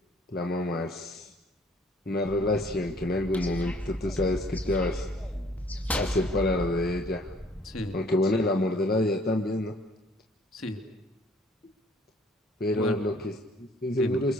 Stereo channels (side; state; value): both; normal; correlation 0.58